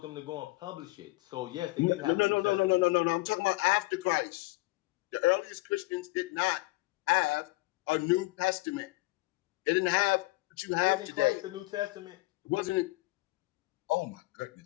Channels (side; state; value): right; quieter; 21.8 dB